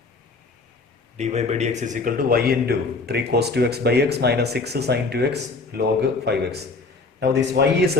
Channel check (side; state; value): right; quieter; 3.8 dB